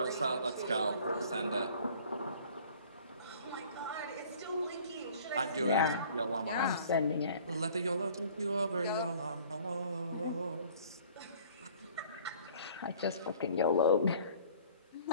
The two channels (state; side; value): inverted; both; correlation -0.52